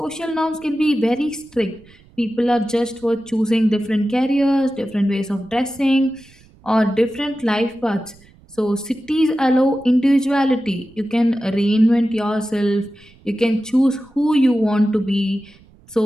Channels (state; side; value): noise; right; rumble, 27 dB below the sound